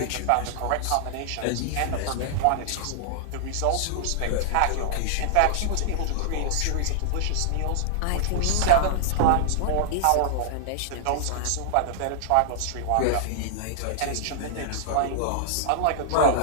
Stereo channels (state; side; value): different; both; correlation -0.01